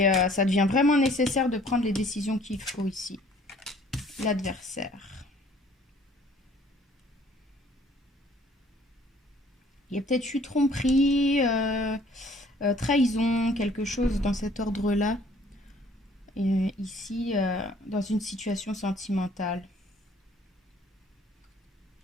ça devient vraiment nécessaire de prendre les décisions qu'il faut ici. L'adversaire. Il y a peut-être eu tromperie, trahison, quelque chose dans cet ordre-là. Ici, dans une situation sentimentale.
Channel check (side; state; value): both; normal; correlation 0.57